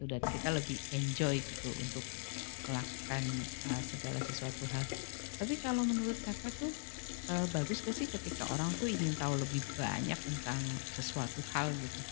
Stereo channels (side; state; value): right; silent; 51 dB below the other